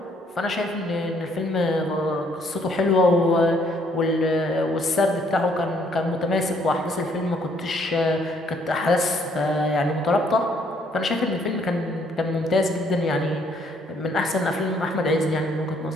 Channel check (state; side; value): normal; both; correlation 0.66